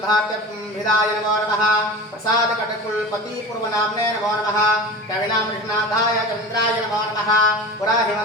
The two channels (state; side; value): normal; both; correlation 0.32